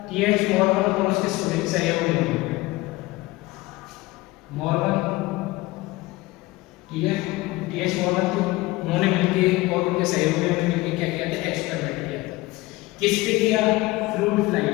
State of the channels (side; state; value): right; quieter; 20.1 dB